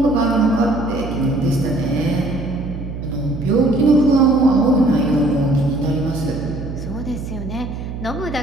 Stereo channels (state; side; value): noise; right; hum, 8 dB below the sound